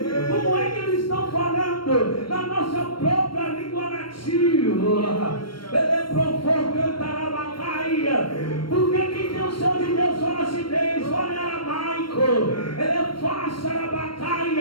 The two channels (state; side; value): late; right; 0.73 ms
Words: Como é que eles estão falando na nossa própria língua nativa? Ele é provocantar a bacaia. Porque quem tem o céu de Deus fala acidez, fala em aramaico. Ele é fácil a